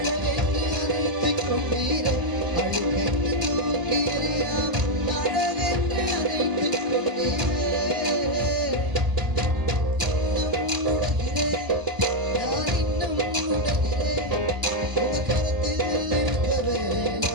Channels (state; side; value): late; left; 1.0 ms